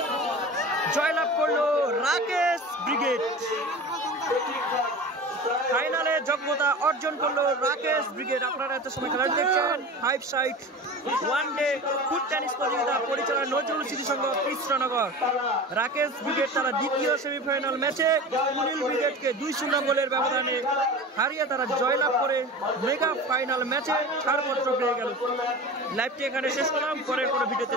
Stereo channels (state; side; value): normal; both; correlation 0.33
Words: জয়লাভ করলো রাকেশ ব্রিগেড ফাইনালে যোগ্যতা অর্জন করলো রাকেশ ব্রিগেড আপনারা এত সময় খেলা দেখছেন 5 side one day foot tennis প্রতিযোগিতা পরিচালনা নজরুল স্মৃতি সংঘ কৃষ্ণনগর। রাকেশ ব্রিগেড তারা দ্বিতীয় সেমিফাইনাল ম্যাচে কুনিল ব্রিগেডকে 2-0 গোলের ব্যবধানে হারিয়ে তারা জয়লাভ করে মেগা ফাইনাল ম্যাচে ছাড়পত্র পেয়ে গেল। লাইভটি এখানে শেষ করলাম, পরের কোনো ভিডিওতে